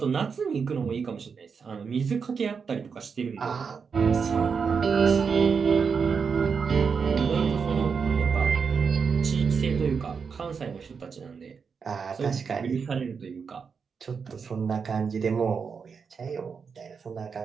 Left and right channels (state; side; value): quieter; left; 5.8 dB